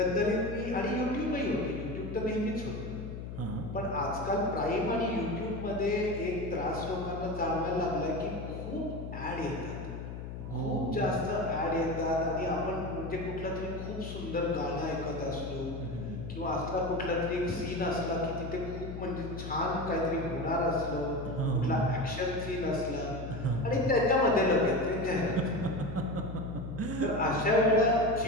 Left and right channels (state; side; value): noise; left; hum, 8 dB below the sound